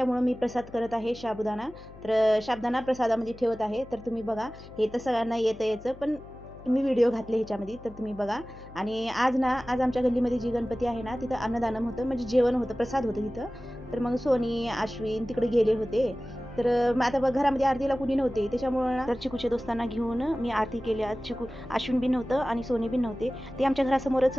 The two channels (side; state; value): left; noise; hum, 19 dB below the sound